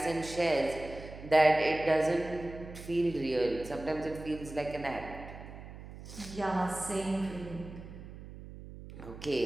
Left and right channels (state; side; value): noise; right; hum, 14 dB below the sound